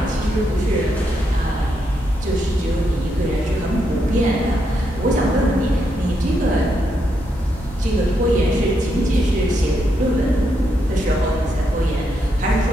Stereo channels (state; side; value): normal; both; correlation 0.80